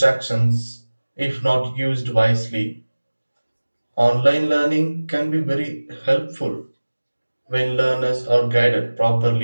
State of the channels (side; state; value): both; inverted; correlation -1.00